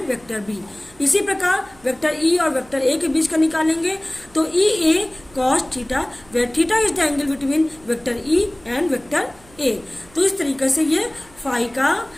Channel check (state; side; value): noise; right; hum, 26 dB below the sound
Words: vector B. इसी प्रकार वेक्टर ई और वेक्टर ए के बीच का निकालेंगे तो E A cos theta, where theta is the angle between vector E and vector A. तो इस तरीके से ये फाई का